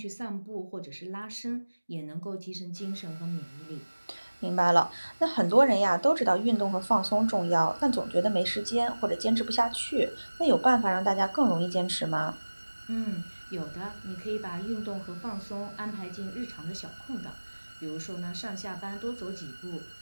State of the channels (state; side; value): inverted; both; correlation -1.00